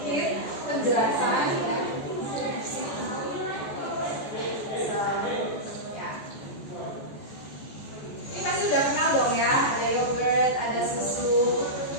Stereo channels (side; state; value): right; late; 14 ms